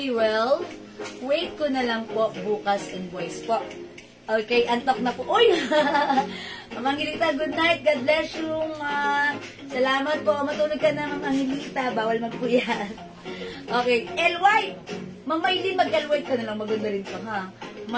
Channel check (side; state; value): both; identical; correlation 1.00